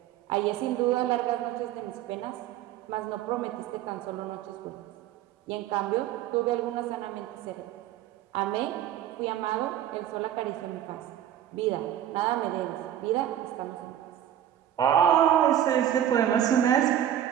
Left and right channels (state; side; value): quieter; left; 10.9 dB